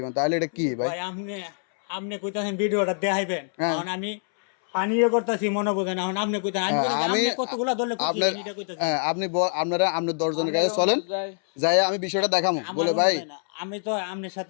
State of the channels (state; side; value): silent; right; 62 dB below the other